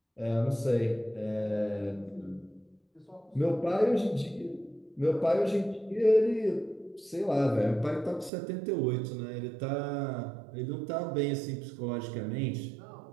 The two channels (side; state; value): left; drops out; at 8.3 s